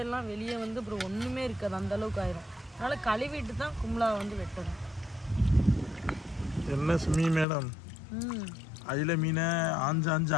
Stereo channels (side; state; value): right; drops out; at 7.5 s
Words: வெளியே வந்து அப்புறம் ஒன்றுமே இருக்காது, அந்தளவுக்கு ஆயிரும். அதனால் கழுவிட்டு தான் குமுலா வந்து வெட்டணும். என்ன சுமி மேடம், அயில மீனை ஆஞ்சு